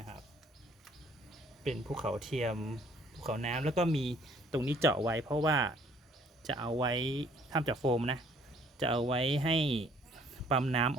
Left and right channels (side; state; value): both; normal; correlation 0.60